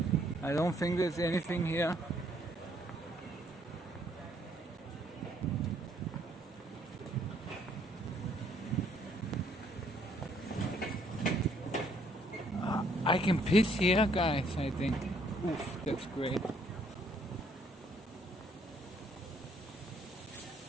I don't think there's anything here. I can piss here, guys, I think. Oof, that's great.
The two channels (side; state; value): both; normal; correlation 0.66